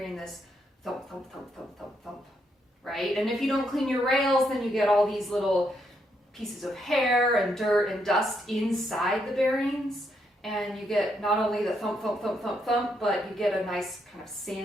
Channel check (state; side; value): normal; both; correlation 0.77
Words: this thump, thump, thump, thump, thump, thump, right? And if you don't clean your rails, then you get all these little pieces of hair and dirt and dust inside the bearings. And you get not only the thump, thump, thump, thump, thump, but you get a nice kind of